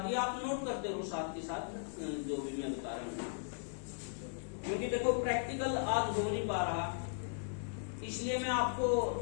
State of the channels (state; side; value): silent; right; 53 dB below the other